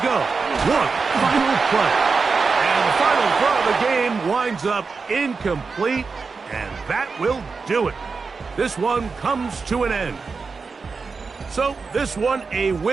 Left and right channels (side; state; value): left; quieter; 4.7 dB